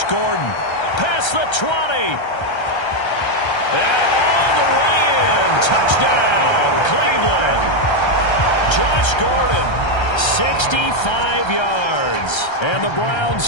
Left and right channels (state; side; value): late; right; 1.3 ms